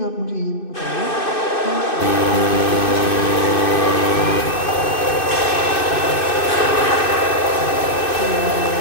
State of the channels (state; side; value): late; right; 2.6 ms